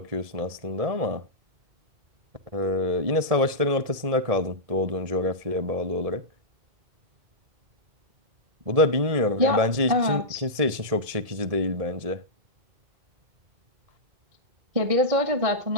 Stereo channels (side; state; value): left; late; 1.7 ms